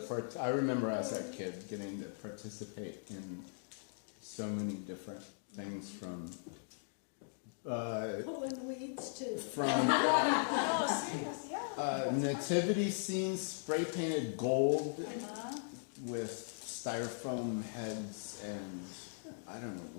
I remember as a kid getting to participate in so many different things from Pulling weeds too. Oh, serious, yeah. nativity scenes spray painted gold with styrofoam heads and I don't know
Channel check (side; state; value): right; silent; digital silence